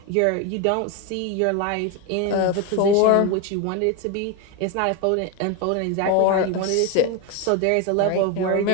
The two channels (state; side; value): different; both; correlation 0.02